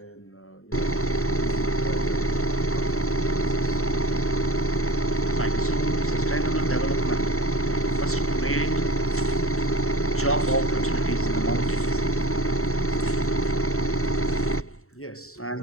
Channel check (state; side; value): late; right; 0.63 ms